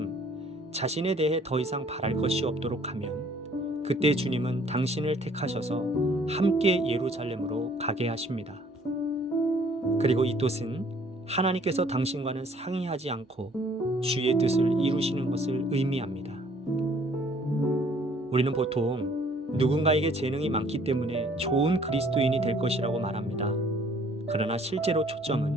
자신에 대해 더 이상 바랄 것이 없도록 하면 그때 주님은 당신을 택하셔서 함께 예루살렘으로 가게 하십니다. 그리고 이 뜻은 하나님께서 당신과는 상의하지 않고 주의 뜻을 이루시는 것을 의미합니다. 우리는 보통 누군가에게 재능이 많기 때문에 좋은 그리스도인이 될 것이라고 말합니다. 그러나 실제로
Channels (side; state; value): both; normal; correlation 0.59